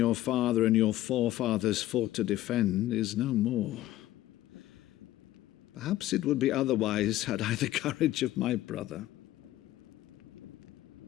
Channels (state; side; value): quieter; right; 15.1 dB